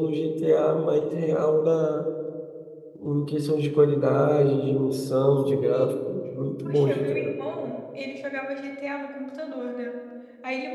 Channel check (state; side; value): identical; both; correlation 1.00